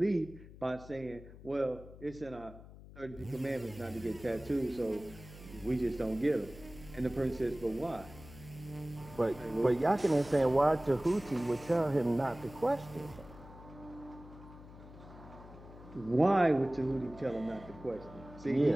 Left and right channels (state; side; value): noise; left; hum, 17 dB below the sound